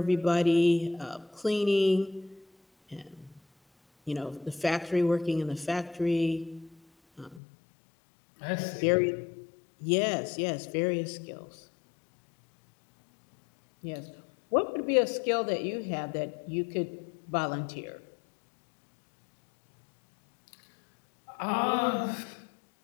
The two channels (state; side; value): drops out; right; at 7.4 s